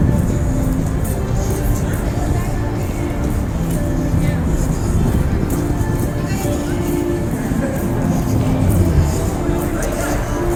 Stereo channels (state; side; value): identical; both; correlation 1.00